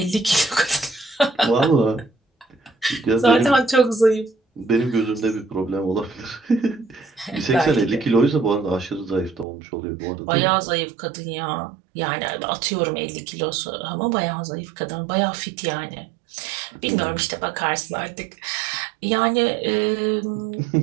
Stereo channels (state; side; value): drops out; left; at 9.5 s